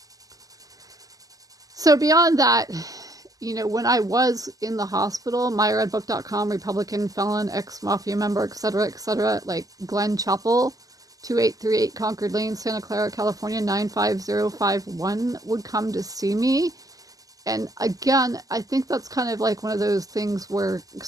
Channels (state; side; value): late; left; 0.17 ms